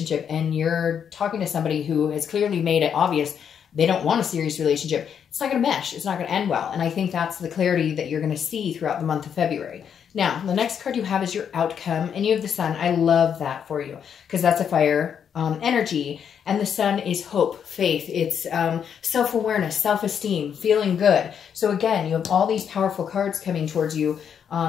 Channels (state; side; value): quieter; right; 7.9 dB